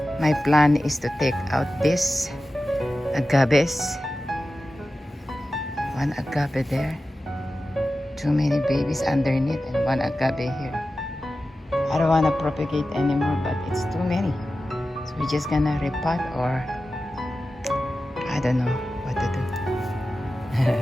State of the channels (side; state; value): both; normal; correlation 0.94